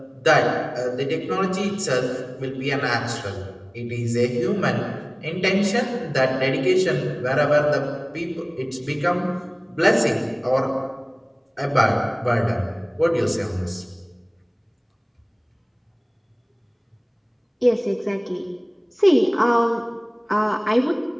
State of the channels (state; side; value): identical; both; correlation 1.00